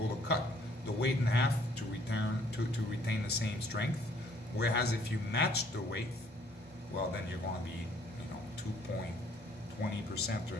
to cut the weight in half to retain the same strength. Whereas if you match the weight, well, then you're going to be, 2.20%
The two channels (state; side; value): normal; both; correlation 0.62